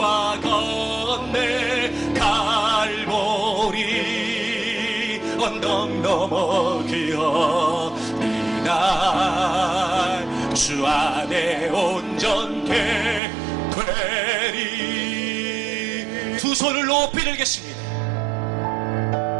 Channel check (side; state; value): left; drops out; at 13.2 s